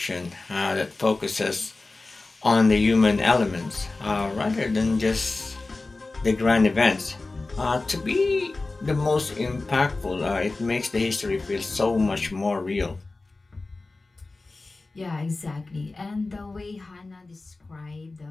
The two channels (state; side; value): quieter; right; 3.4 dB